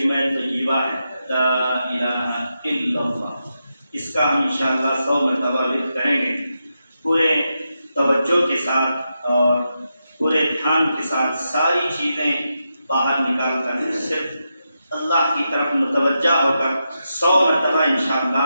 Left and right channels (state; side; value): inverted; both; correlation -0.86